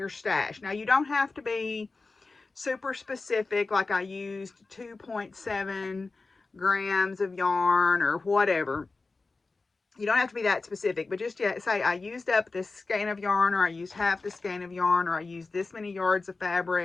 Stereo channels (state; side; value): quieter; right; 3.8 dB